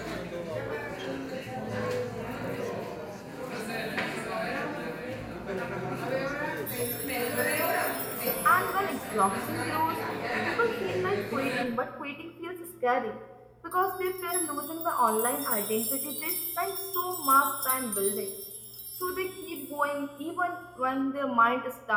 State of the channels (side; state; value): both; identical; correlation 1.00